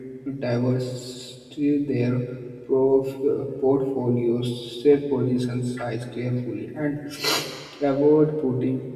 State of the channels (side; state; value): both; identical; correlation 1.00